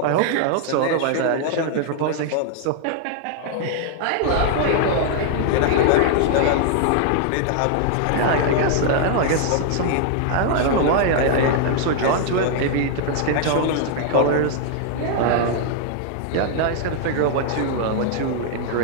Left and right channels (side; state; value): both; different; correlation -0.01